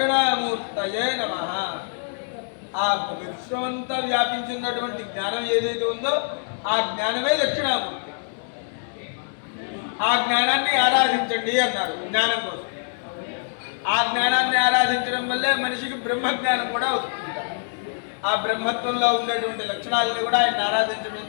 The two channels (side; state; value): right; silent; digital silence